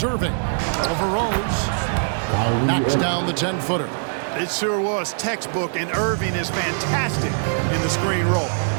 Irving. Over Rose. Knocks down the 10-footer. It sure was textbook, and Irving is fantastic in the screen roll.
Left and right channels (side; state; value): left; silent; digital silence